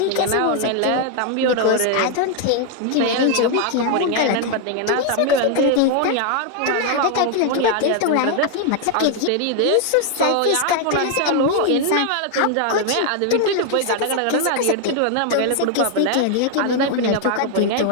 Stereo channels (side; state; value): both; different; correlation 0.00